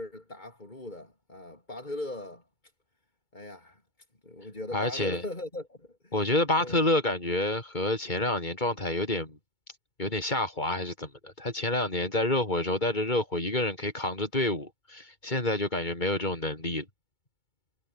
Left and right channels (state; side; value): late; right; 2.2 ms